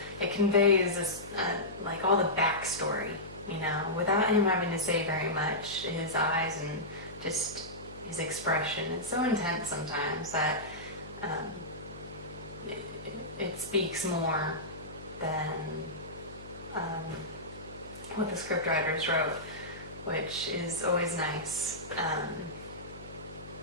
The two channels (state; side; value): noise; left; hum, 15 dB below the sound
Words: It conveys this, like all the backstory, you know, without him having to say very much. His eyes and just his expression, it's so intense sometimes that it speaks more than what the scriptwriters wrote, which is always nice.